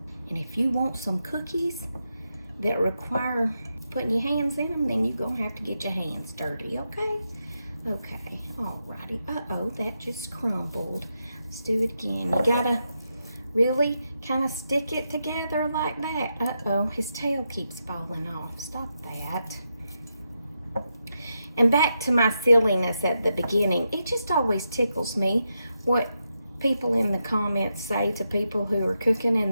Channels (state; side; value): inverted; both; correlation -0.85